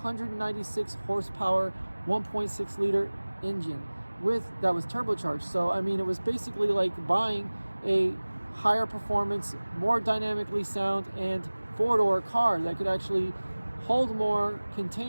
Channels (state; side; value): inverted; both; correlation -1.00